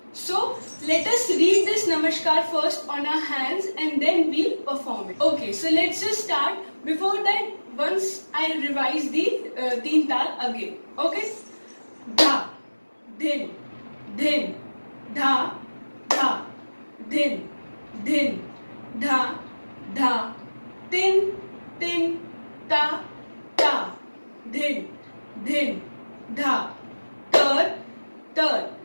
So let us read this Namaskar first on our hands and then we'll perform it. Okay, so let's just start. Before that, once I revise the teen tal again. Okay? Dha, din, din, dha, dha, din, din, dha, dha, tin, tin, ta, ta, din, din, dha, tar, tar,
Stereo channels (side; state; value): both; inverted; correlation -1.00